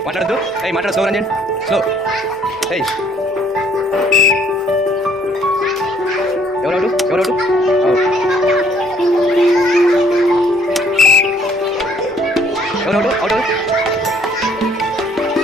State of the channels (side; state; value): both; normal; correlation 0.64